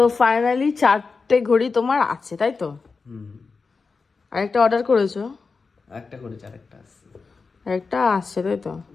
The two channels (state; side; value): quieter; right; 4.6 dB